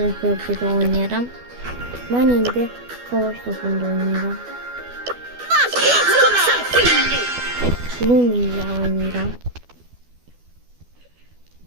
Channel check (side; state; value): left; late; 12 ms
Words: bölgede oynayarım. Ben indi savaş topunda oynayacağım. Lumi ile oynayacağım.